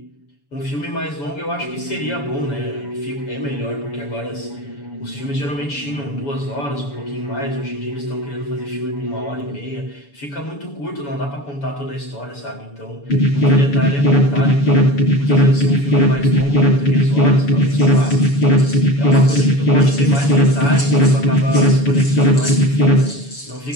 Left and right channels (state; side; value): late; right; 7.0 ms